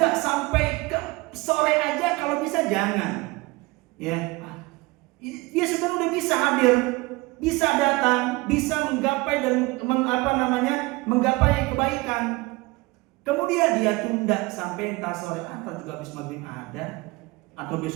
sampai ke sore aja kalau bisa jangan. Ya, dia sebenarnya udah bisa hadir, bisa datang, bisa menggapai dan menggapai kebaikan. Kemudian dia tunda sampai entah sore atau juga habis maghrib ada, atau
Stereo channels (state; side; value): quieter; left; 22.9 dB